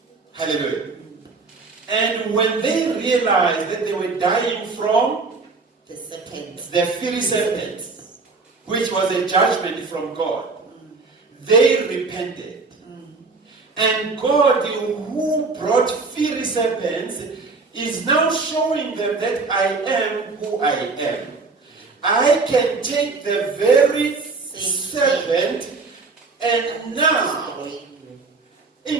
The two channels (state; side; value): quieter; left; 4.0 dB